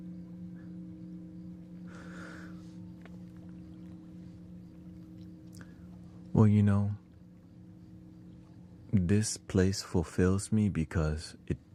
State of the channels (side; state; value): both; identical; correlation 1.00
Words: Well, you know, this place fulfills me because